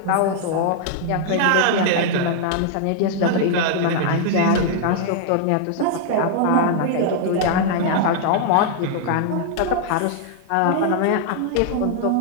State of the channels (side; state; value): both; different; correlation 0.00